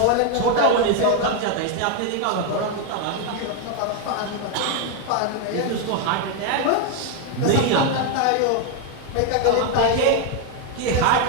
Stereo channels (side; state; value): both; different; correlation 0.01